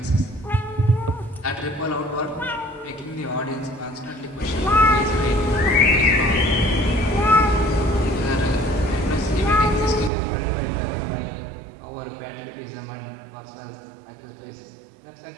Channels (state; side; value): drops out; left; at 10.1 s